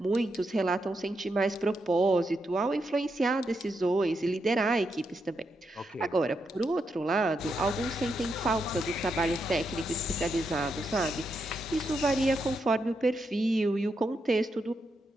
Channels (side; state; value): both; normal; correlation 0.83